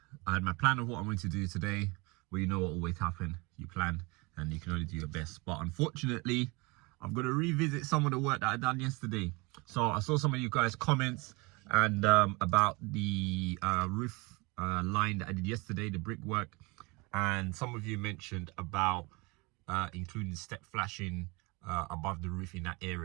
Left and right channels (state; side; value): quieter; left; 26.6 dB